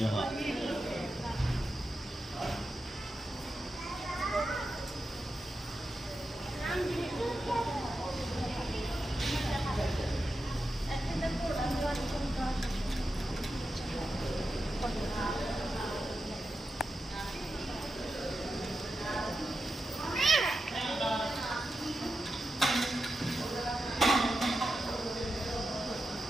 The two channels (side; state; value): both; normal; correlation 0.89